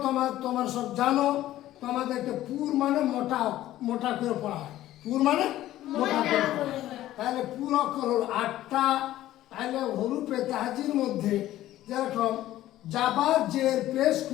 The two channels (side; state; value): right; quieter; 14.2 dB